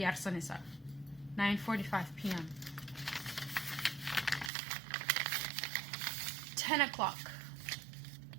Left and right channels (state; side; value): drops out; left; at 4.5 s